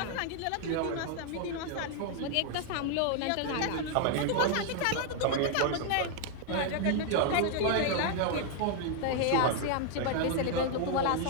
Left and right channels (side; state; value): both; different; correlation 0.00